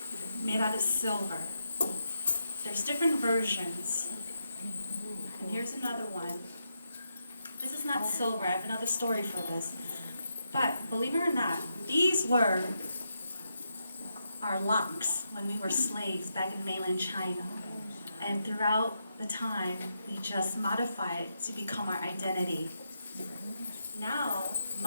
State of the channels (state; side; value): inverted; both; correlation -0.83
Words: made out of silver. There's different versions. And here's another one. This is not silver. I have another story for this. But believe it or not, these were our locks when we were slaves back in mainland China. And throughout the time, we just modified it to become our identity. Now,